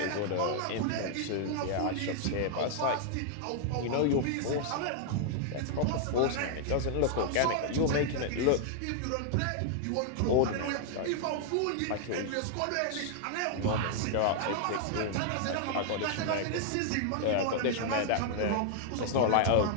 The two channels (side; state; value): both; different; correlation 0.00